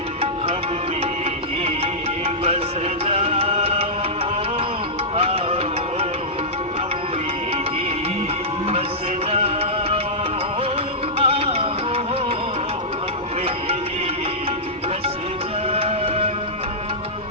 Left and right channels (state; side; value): normal; both; correlation -0.14